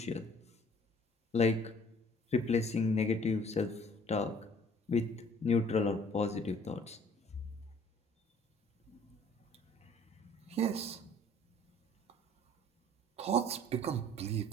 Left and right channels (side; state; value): both; normal; correlation 0.55